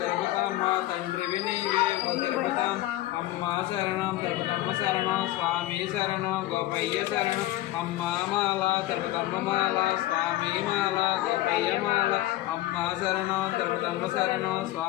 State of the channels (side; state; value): right; quieter; 15.9 dB